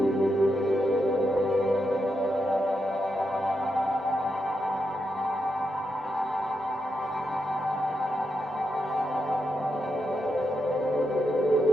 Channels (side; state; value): both; normal; correlation 0.84